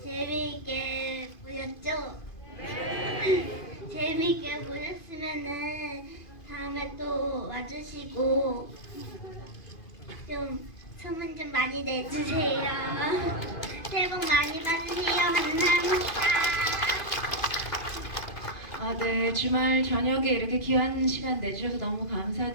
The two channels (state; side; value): late; right; 2.5 ms